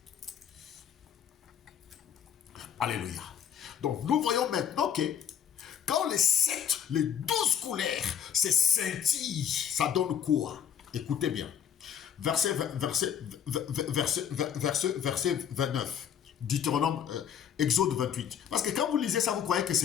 Alléluia. Donc, nous voyons maintenant que quand les 12 couleurs se scintillent, ça donne quoi? Écoutez bien. Verset 29. Deutéronome, Exode 28. Parce que quand vous lisez ça, vous croyez que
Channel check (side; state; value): right; quieter; 8.6 dB